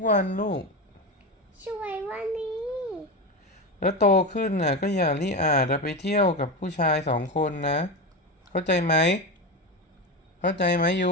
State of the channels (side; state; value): both; normal; correlation 0.18